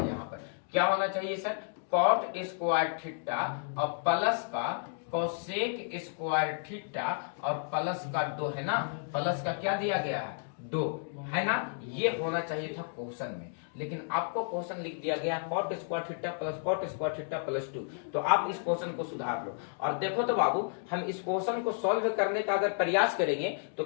पर क्या होना चाहिए सर, कॉट स्क्वायर थीटा और प्लस का कोसेक स्क्वायर थीटा और प्लस का 2 है ना, प्लस का क्या दिया गया है 2 है ना, ये होना चाहिए था क्वेश्चन में। लेकिन आपको क्वेश्चन लिख दिया गया cot square theta plus cot square theta plus 2। तो आप इस क्वेश्चन को सुधार लो। और देखो तो बाबू, हम इस क्वेश्चन को सॉल्व करने का अगर प्रयास करेंगे तो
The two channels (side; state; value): right; silent; digital silence